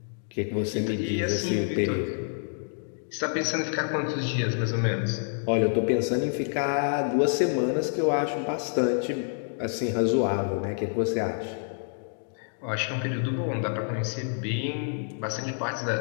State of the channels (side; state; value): right; silent; digital silence